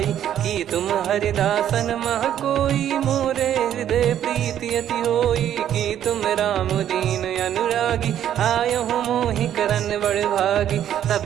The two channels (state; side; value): quieter; left; 10.6 dB